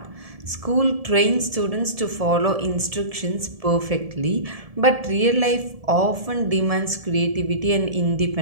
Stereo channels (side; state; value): left; late; 1.7 ms